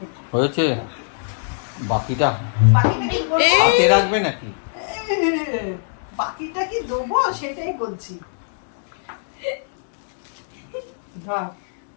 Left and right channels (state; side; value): silent; right; digital silence